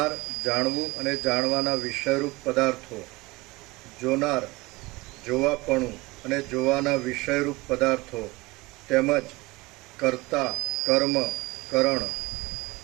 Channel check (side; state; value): left; quieter; 22.4 dB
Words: જાણવું અને જાણવાના વિષયરૂપ પદાર્થો. જોનાર, જોવાપણું અને જોવાના વિષયરૂપ પદાર્થો, તેમજ કર્તા, કર્મ, કરણ,